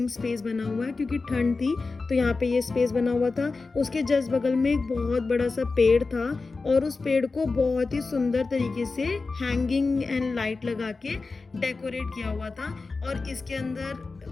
स्पेस बना हुआ है, क्योंकि ठंड थी तो यहाँ पे ये स्पेस बना हुआ था। उसके जस्ट बगल में एक बहुत बड़ा सा पेड़ था, और उस पेड़ को बहुत ही सुंदर तरीके से हैंगिंग एंड लाइट लगा के डेकोरेट किया हुआ था। और इसके अंदर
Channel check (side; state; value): right; quieter; 4.0 dB